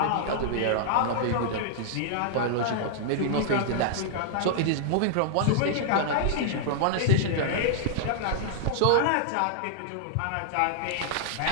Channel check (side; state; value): both; different; correlation -0.01